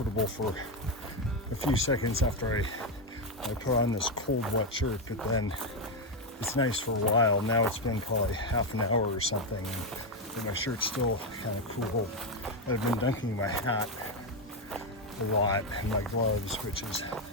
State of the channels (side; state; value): both; normal; correlation 0.07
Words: for a few seconds after I put on this cold wet shirt, but then it's nice for a while. Now it's been probably half an hour or something, and my shirt's still kind of cool. I've been dunking my hat a lot and my gloves, which is